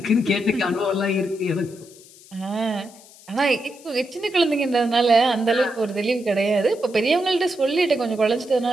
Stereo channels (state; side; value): noise; left; hiss, 23 dB below the sound